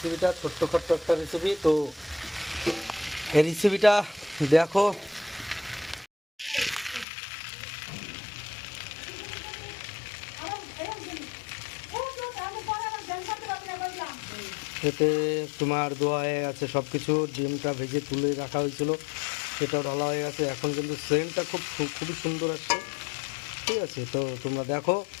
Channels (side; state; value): right; drops out; at 7.1 s